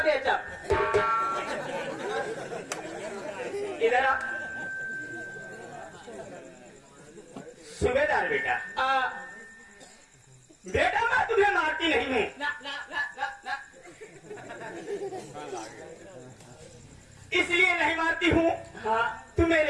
बेचा। इधर आ सुबेदार बेटा। बेटा मैं तुम्हें मारती नहीं हूँ। ना ना ना ना ना इसलिए नहीं मारती हूँ, हाँ तू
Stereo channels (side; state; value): both; identical; correlation 1.00